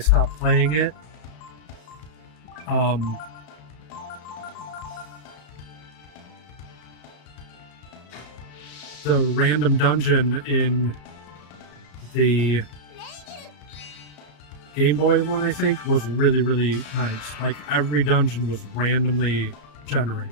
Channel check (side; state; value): right; late; 33 ms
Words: playing it. The random dungeon in the Game Boy one, I think, was really, really nice. Like, every dungeon was randomly generated.